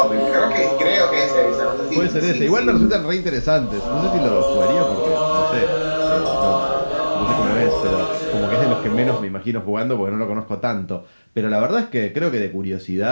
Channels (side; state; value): both; inverted; correlation -1.00